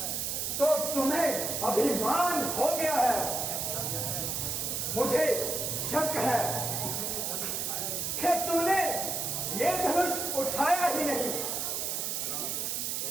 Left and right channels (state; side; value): noise; right; hiss, 1 dB below the sound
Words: तो तुम्हें अभिमान हो गया है। मुझे शक है कि तूने ये धनुष उठाया ही नहीं।